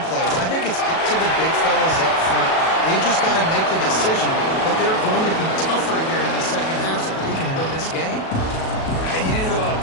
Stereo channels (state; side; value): late; right; 37 ms